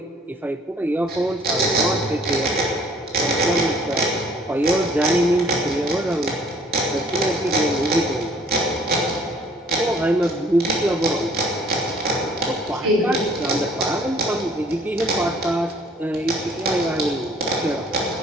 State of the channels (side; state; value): both; normal; correlation 0.56